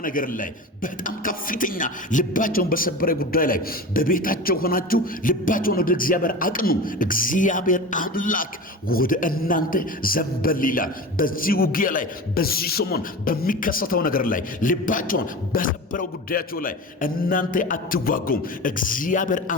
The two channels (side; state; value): both; normal; correlation 0.30